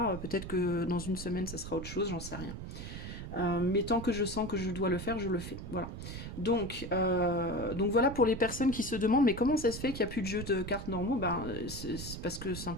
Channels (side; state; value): right; noise; rumble, 8 dB below the sound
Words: peut-être que dans une semaine ça sera autre chose, j'en sais rien. Mais tant que je sens que je dois le faire, je le fais. Voilà. Donc voilà pour les personnes qui se demandent mais comment ça se fait qu'il n'y a plus de jeux de cartes normaux. Ben, c'est parce que